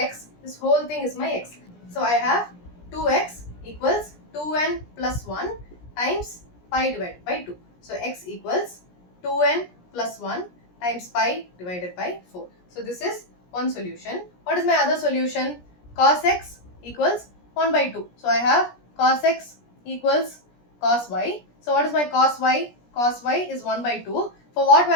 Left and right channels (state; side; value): late; right; 17 ms